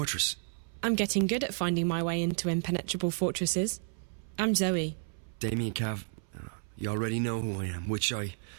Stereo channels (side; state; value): left; silent; 57 dB below the other